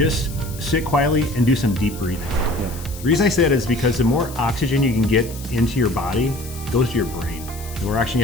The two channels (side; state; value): left; noise; hiss, 16 dB below the sound